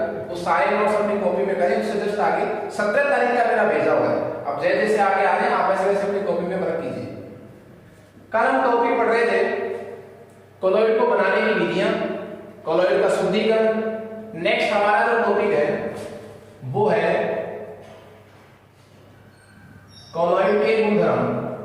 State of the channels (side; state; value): both; identical; correlation 1.00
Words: वो सारे नोट्स अपनी कॉपी में करें। उससे जस्ट आगे 17 तारीख का मेरा भेजा हुआ है। अब जैसे जैसे आगे आ रहे हैं आप वैसे वैसे अपनी कॉपी में रख कीजिए। कल हम टॉपिक पढ़ रहे थे कोलॉइड को बनाने की विधियां, कोलॉइड का शुद्धिकरण। नेक्स्ट हमारा जो टॉपिक है वो है कोलॉइड के गुणधर्म।